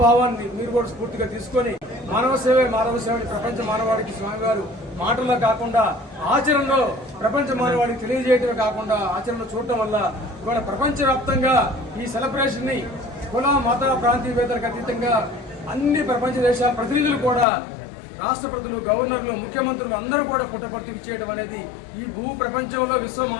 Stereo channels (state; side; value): drops out; right; at 17.4 s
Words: మీరు కూడా స్ఫూర్తిగా తీసుకొని మానవ సేవే మానవ సేవని ప్రపంచ మానవాడికి స్వామివారు మాటల్లో కాకుండా ఆచరణలో ప్రపంచ మానవాడికి తెలియజేయడమే కాకుండా ఆచరణలో చూడటం వల్ల ఇవాళ ప్రపంచవ్యాప్తంగా ఈ సెలబ్రేషన్ ని కుల మత ప్రాంతీయవేత్తలకు అతీతంగా అన్ని ప్రపంచ దేశాల ప్రతినిధులు కూడా, రాష్ట్రపతులు, గవర్నర్లు, ముఖ్యమంత్రులు అందరూ కూడా పుట్టపర్తికి చేయడం అనేది ఈ భూ ప్రపంచంలో విశ్వ